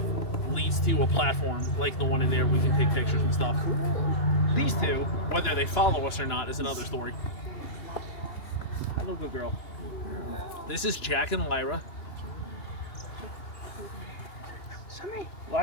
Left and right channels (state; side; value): late; right; 2.9 ms